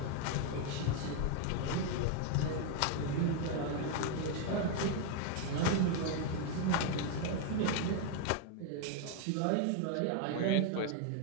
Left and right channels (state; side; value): different; both; correlation 0.01